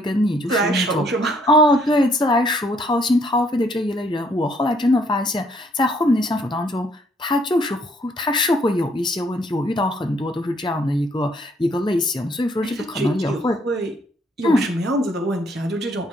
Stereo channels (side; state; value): both; normal; correlation 0.66